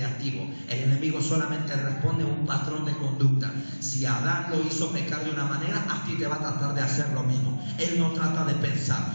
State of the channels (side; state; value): both; inverted; correlation -1.00